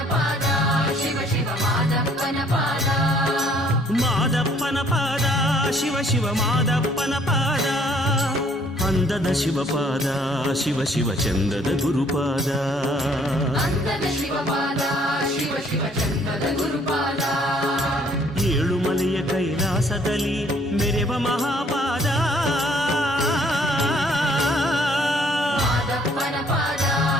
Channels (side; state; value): both; normal; correlation 0.61